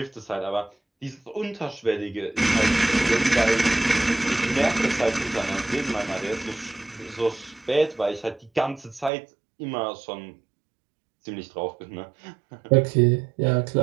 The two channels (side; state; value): left; drops out; at 9.1 s